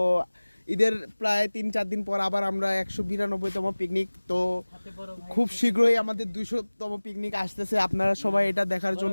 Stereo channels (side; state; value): both; inverted; correlation -1.00